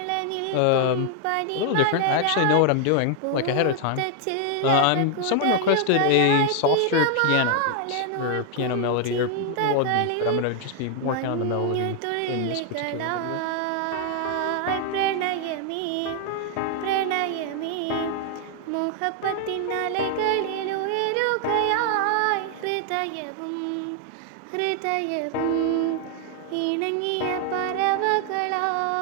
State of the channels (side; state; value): both; different; correlation 0.00